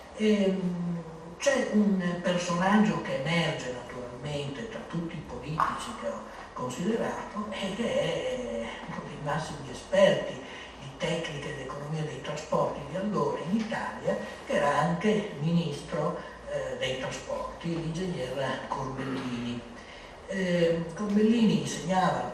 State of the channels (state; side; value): identical; both; correlation 1.00